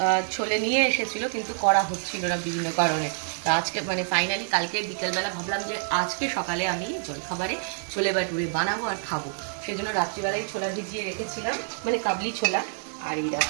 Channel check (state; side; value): silent; left; digital silence